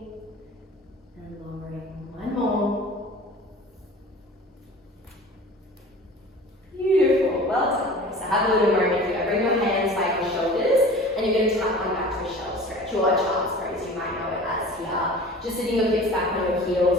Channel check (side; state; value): both; normal; correlation 0.42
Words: and lowering. 1 more. Beautiful. Well done. So have a little moment here. Bring your hands by your shoulders, and you're going to tap on back to a shell stretch, or a child's pose, you might know it as here. Just sitting your hips back on your